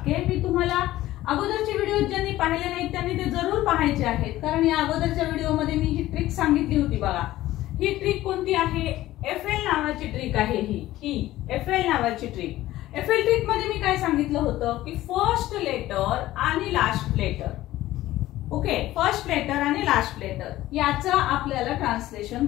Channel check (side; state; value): right; quieter; 15.5 dB